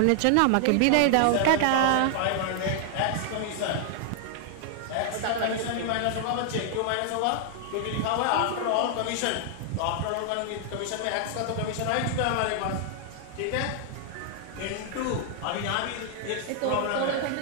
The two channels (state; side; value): different; both; correlation 0.00